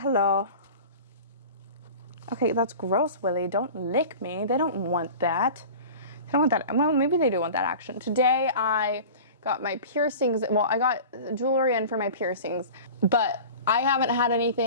Okay, that's gross, Willie. Don't lick me. They don't want that. I don't want that. Well, maybe they do want that action. Today I got my piercings. Well, I got jewelry in for my piercings, but I haven't had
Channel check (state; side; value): inverted; both; correlation -0.37